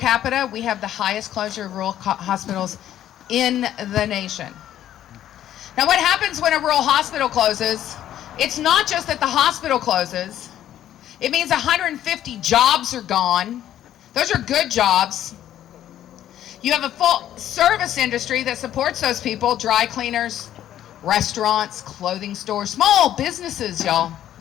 we have the highest closure of rural hospitals in the nation. Now, what happens when a rural hospital closes? It's not just that the hospital closes. It means 150 jobs are gone. Those are good jobs. You have a full service industry that supports those people, dry cleaners, restaurants, clothing stores, small businesses, y'all.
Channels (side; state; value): right; quieter; 11.7 dB